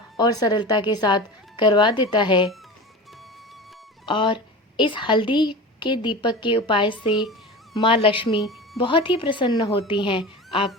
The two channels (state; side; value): normal; both; correlation 0.31